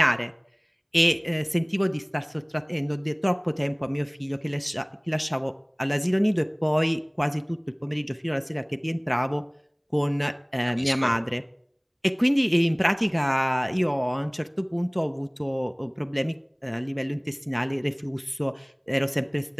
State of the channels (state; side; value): identical; both; correlation 1.00